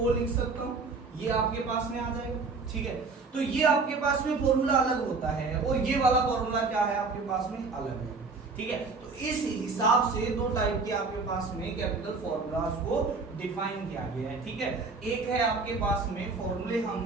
लिख सकता हूं, ये आपके पास में आ जाएगा। ठीक है, तो ये आपके पास में फॉर्मूला अलग होता है और ये वाला फॉर्मूला क्या है आपके पास में अलग है। ठीक है, तो इस हिसाब से दो टाइप के आपके पास में केमिकल फॉर्मूलाज को डिफाइन किया गया है। ठीक है, एक है आपके पास में फॉर्मूले हम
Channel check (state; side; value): quieter; left; 4.2 dB